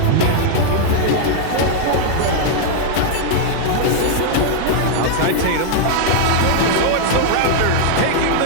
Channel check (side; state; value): both; different; correlation 0.00